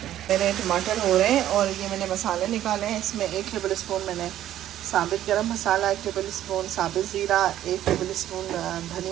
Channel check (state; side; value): quieter; left; 12.3 dB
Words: हैं। मेरे टमाटर हो रहे हैं, और ये मैंने मसाले निकाले हैं। इसमें 1 टेबल स्पून मैंने साबित गरम मसाला, 1 टेबल स्पून साबित ज़ीरा, 1 टेबल स्पून